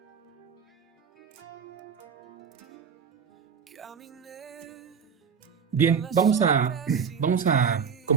Bien, vamos a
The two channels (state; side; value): quieter; left; 6.5 dB